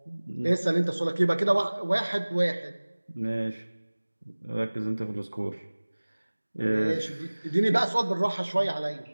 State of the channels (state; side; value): inverted; both; correlation -1.00